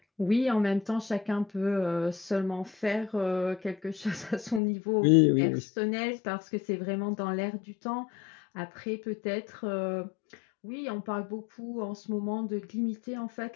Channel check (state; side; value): drops out; right; at 4.6 s